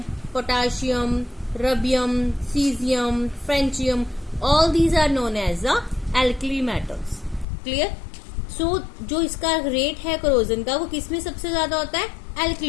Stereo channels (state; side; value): drops out; right; at 7.5 s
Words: potassium, rubidium, caesium, francium, all these are known as the alkali metals. Clear? So जो इसका रेट है करोजन का वो किसमें सबसे ज्यादा होता है?